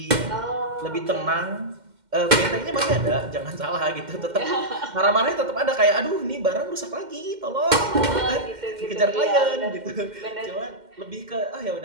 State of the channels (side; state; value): left; late; 2.1 ms